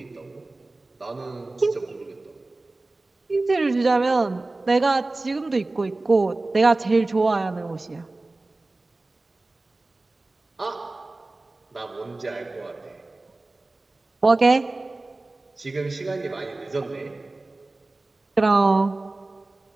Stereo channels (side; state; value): left; quieter; 3.1 dB